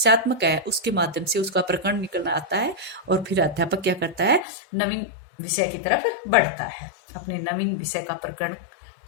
है, उसके माध्यम से उसका प्रकरण निकलना आता है और फिर अध्यापक क्या करता है, नवीन विषय की तरफ बढ़ता है, अपने नवीन विषय का प्रकरण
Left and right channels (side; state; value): right; drops out; at 4.5 s